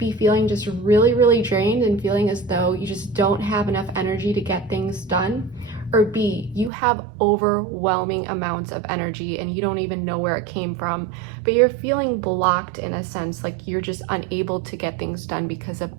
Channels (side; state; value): left; drops out; at 6.7 s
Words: feeling just really drained and feeling as though you just don't have enough energy to get things done. Or B, you have overwhelming amounts of energy and you don't even know where it came from, but you're feeling blocked in a sense, like you're just unable to get things done because of